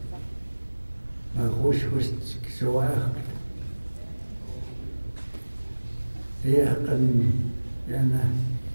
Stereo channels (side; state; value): both; inverted; correlation -1.00